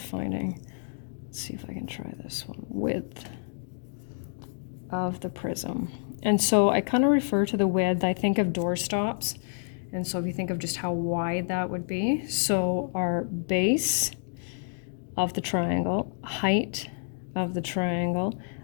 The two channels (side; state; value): right; silent; digital silence